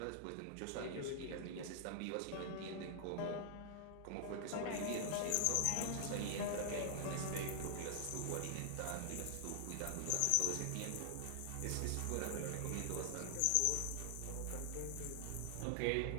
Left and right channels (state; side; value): different; both; correlation 0.00